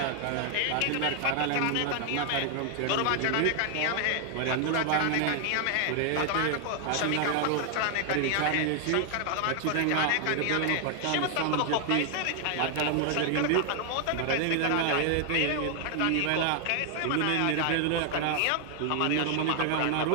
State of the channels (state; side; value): different; both; correlation 0.00